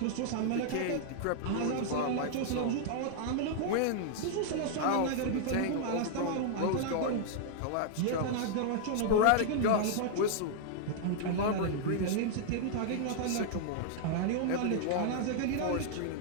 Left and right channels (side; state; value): both; different; correlation -0.01